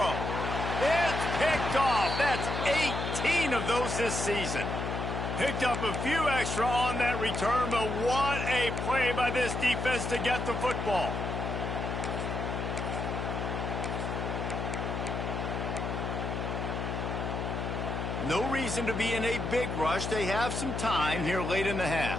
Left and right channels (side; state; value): left; noise; hum, 3 dB below the sound